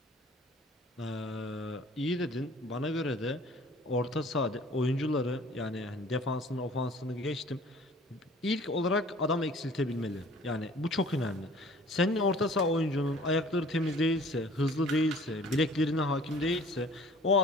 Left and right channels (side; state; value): both; normal; correlation 0.50